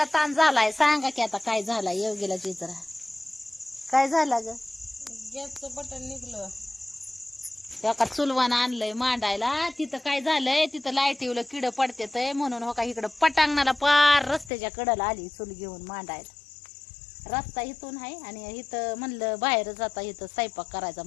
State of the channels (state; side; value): drops out; right; at 14.5 s